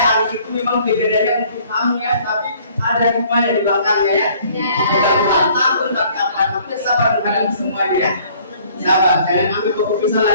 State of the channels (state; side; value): inverted; both; correlation -0.58